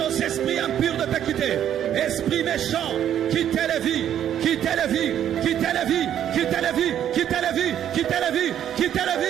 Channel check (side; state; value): left; quieter; 10.3 dB